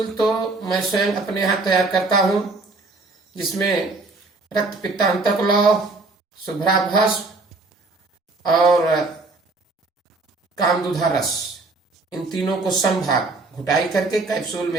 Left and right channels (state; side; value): quieter; left; 3.4 dB